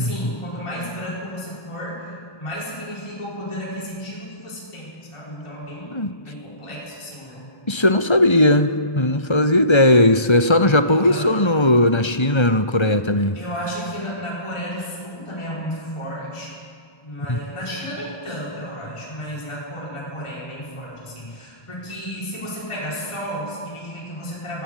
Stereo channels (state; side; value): late; right; 1.3 ms